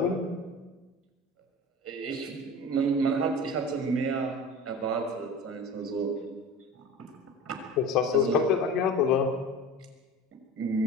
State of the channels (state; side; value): normal; both; correlation 0.35